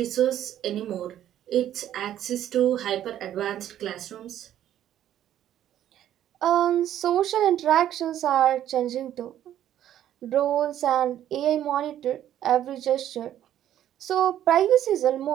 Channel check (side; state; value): left; quieter; 11.5 dB